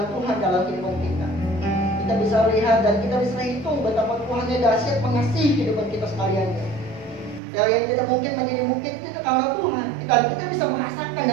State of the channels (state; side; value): drops out; left; at 7.4 s